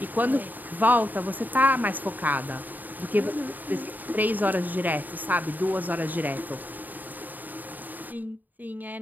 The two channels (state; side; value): late; left; 0.086 ms